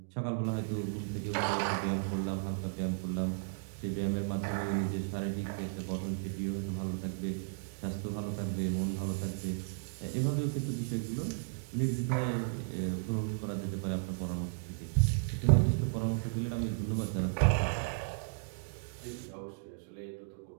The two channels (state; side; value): silent; left; digital silence